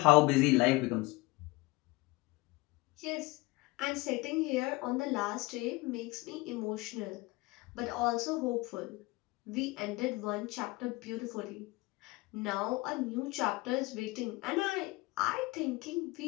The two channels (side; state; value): right; quieter; 22.8 dB